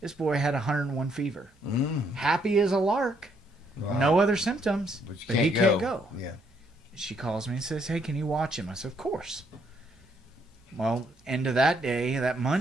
this boy had 101 fever. Happy as a lark. Wow. No other symptoms, but he can't go. Yeah. She calls me and says, hey, can you watch him? I said, of course. Well, end of that day, that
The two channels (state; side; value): normal; both; correlation 0.71